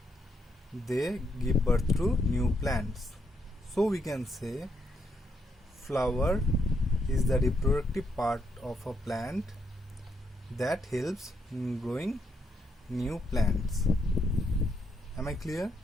they give birth to new plants. So we can say flower is the reproductive part of a plant that helps in growing new plants. Am I clear?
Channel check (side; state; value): both; normal; correlation 0.77